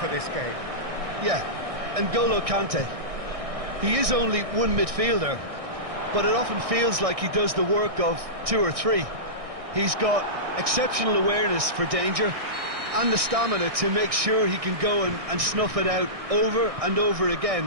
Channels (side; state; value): left; late; 1.6 ms